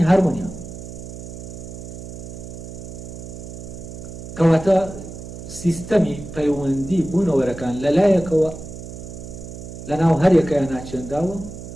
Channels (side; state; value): right; noise; hum, 11 dB below the sound